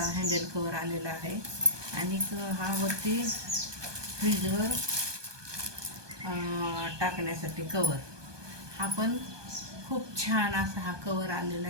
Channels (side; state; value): left; late; 1.2 ms